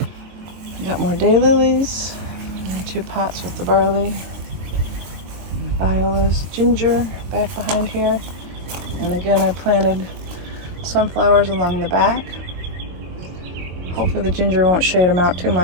We got more daylilies. 2 pots with the barley. And violas, ginger back behind here. And again, I planted sunflowers along the back. Hopefully the ginger won't shade them out too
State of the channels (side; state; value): left; late; 22 ms